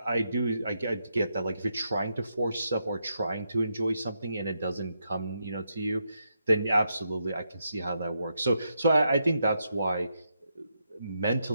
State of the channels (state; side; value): inverted; both; correlation -0.82